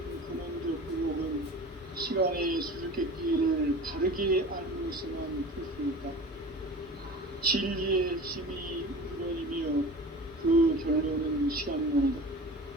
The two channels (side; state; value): both; normal; correlation 0.37